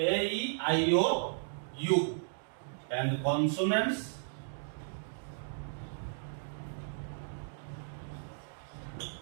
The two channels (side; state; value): left; silent; digital silence